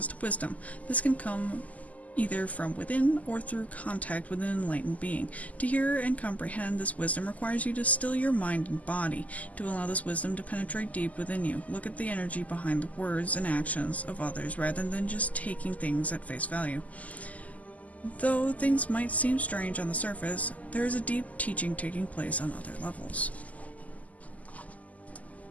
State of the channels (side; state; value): right; late; 0.074 ms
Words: to wisdom. This can come either from within or through contact with an enlightened being. To hear and comprehend this wisdom requires you to still your mind and body, to allow this wisdom to penetrate deep within you. Look at the energy behind the words and actions of others rather than just taking things at face value. Though things might seem strange on the surface, there is a deep teaching taking place on other levels.